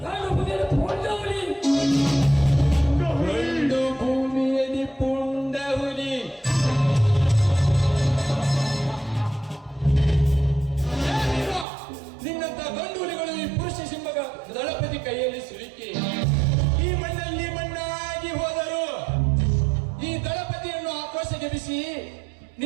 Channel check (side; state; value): left; drops out; at 11.7 s